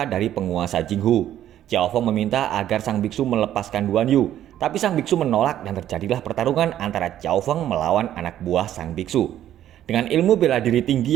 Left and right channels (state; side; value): quieter; left; 11.7 dB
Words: dari penguasa Jinghu. Xiao Feng meminta agar sang biksu melepaskan Duan Yu. Tapi sang biksu menolak dan terjadilah pertarungan antara Xiao Feng melawan anak buah sang biksu. Dengan ilmu bela diri